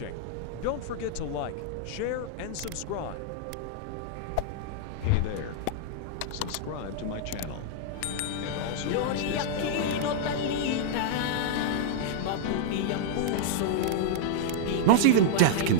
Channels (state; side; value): different; both; correlation -0.01